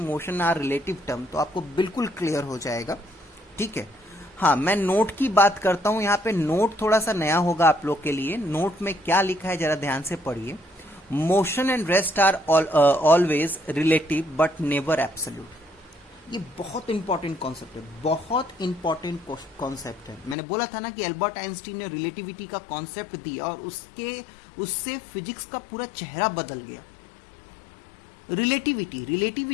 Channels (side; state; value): right; drops out; at 20.4 s